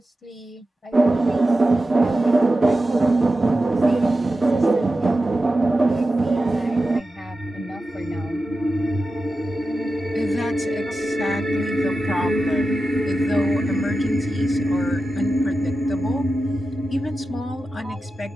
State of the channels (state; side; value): normal; both; correlation 0.92